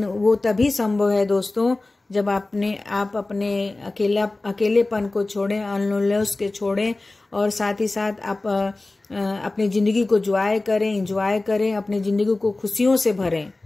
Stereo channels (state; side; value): quieter; right; 3.0 dB